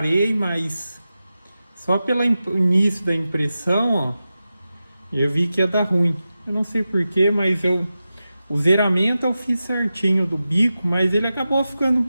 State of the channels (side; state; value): both; inverted; correlation -0.93